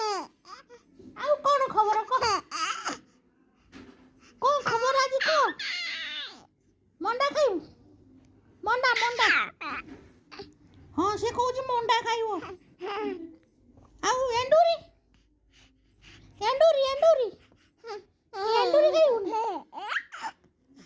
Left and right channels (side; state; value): both; identical; correlation 1.00